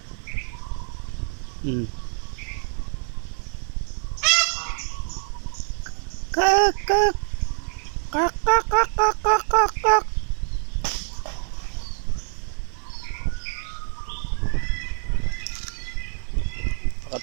Kak, kak. Kak, kak, kak, kak, kak, kak, kak.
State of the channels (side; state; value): left; silent; digital silence